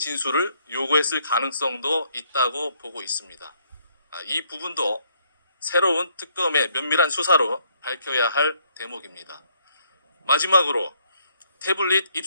요구했을 가능성도 있다고 보고 있습니다. 이 부분도 새로운 특검의 면밀한 수사로 밝혀야 할 대목입니다. 마지막으로 태블릿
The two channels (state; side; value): inverted; both; correlation -0.69